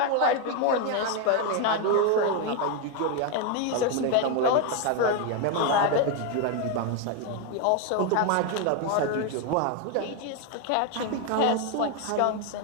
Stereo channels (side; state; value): both; different; correlation 0.01